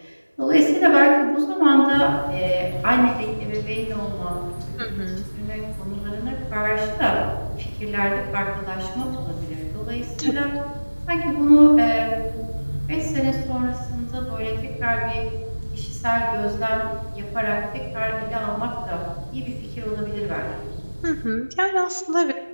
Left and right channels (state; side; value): inverted; both; correlation -1.00